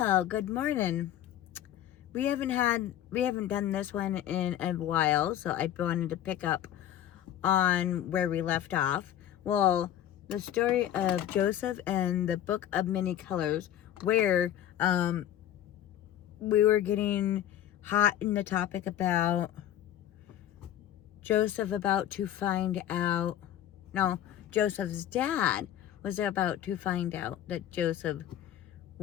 good morning. We haven't done this one in a while, so I wanted to pick up on where we left off. Well, the story of Joseph and the Book of Many Colors, where we were getting hot in the topic about Joseph about to find out. No, Joseph's dad was about to find out that Joseph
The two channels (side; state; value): right; quieter; 11.5 dB